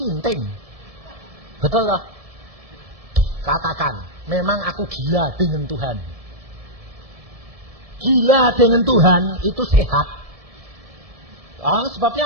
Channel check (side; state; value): left; late; 1.7 ms